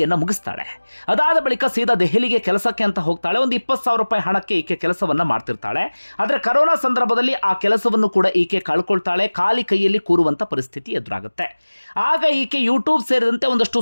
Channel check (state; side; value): inverted; both; correlation -1.00